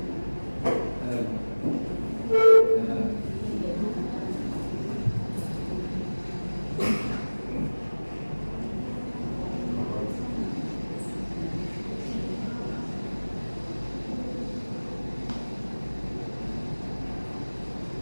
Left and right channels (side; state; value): both; inverted; correlation -1.00